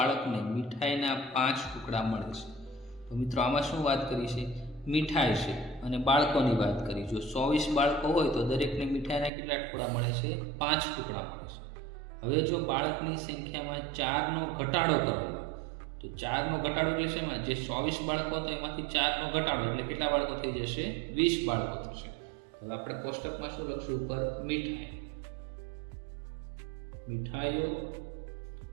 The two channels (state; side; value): drops out; left; at 9.3 s